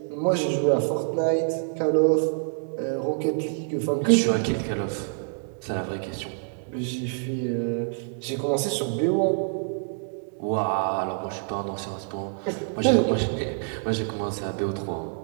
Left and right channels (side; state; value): left; silent; digital silence